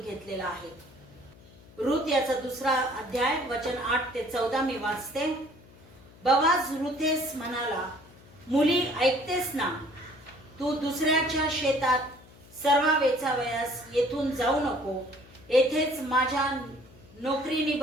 घेतलेला आहे. रूथ याचा 2रा अध्याय वचन 8 ते 14 मी वाचते. बोआज रूथेस म्हणाला, मुली ऐकतेस ना, तू दुसऱ्याच्या शेतात सर्व वेचावयास येथून जाऊ नको, येथेच माझ्या नोकरीनी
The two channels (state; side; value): noise; left; hum, 23 dB below the sound